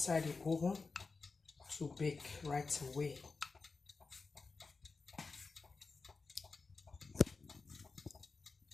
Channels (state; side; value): quieter; right; 4.2 dB